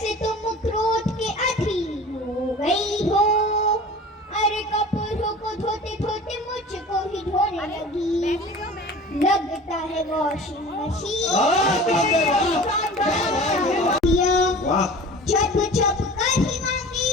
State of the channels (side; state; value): both; normal; correlation 0.40